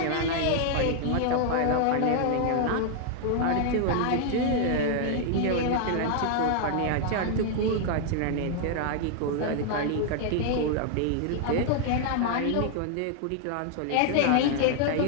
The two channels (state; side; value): different; both; correlation 0.00